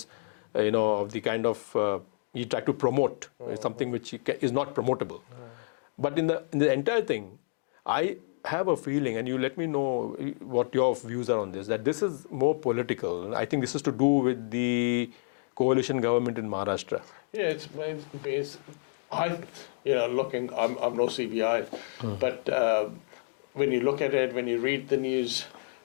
of the kind of he tried to promote something which is not promotable. But in the entire thing, I have a feeling, and you let me know what your views are on this, that this is more political. I think this is to do with the coalition government in Maharashtra. Yeah, it's based. I'm no CBI, but when you look at it, when you read the news,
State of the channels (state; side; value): silent; right; digital silence